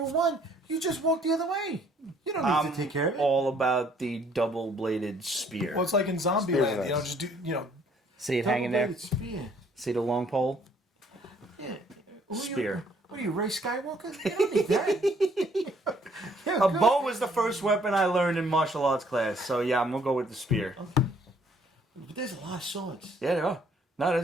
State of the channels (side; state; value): both; normal; correlation 0.63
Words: with one, you just walk the other way. You don't need to take care of it. All about the double-bladed spear. Well, it's like in Spears Zombieland. are You know, nice. just do. You know, See it hanging there. Double-bladed spear. See the long pole. Yeah. Who Spear. What are you, Ray Skywalker? You don't need that. Yeah, A good. bow was the first weapon I learned in martial arts class. So yeah, I'm gonna go with the spear. But there's a lot of swords. Yeah, there are. No,